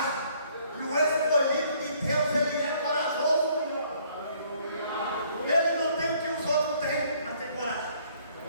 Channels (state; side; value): inverted; both; correlation -0.63